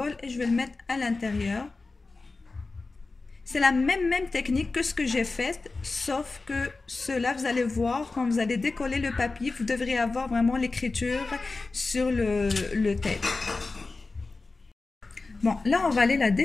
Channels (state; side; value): quieter; right; 3.7 dB